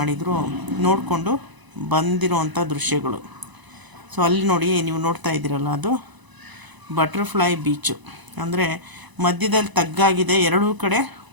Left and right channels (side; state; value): left; late; 1.0 ms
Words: ನೋಡಿಕೊಂಡು ಬಂದಿರೋವಂಥ ದೃಶ್ಯಗಳು. ಸೊ ಅಲ್ಲಿ ನೋಡಿ, ನೀವು ನೋಡ್ತಾ ಇದ್ದೀರಲ್ಲ, ಅದು ಬಟರ್ಫ್ಲೈ ಬೀಚು. ಅಂದರೆ ಮಧ್ಯದಲ್ಲಿ ತಗ್ಗಾಗಿದೆ, ಎರಡೂ ಕಡೆ